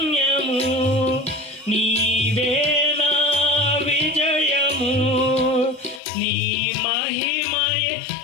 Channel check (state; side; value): drops out; right; at 6.0 s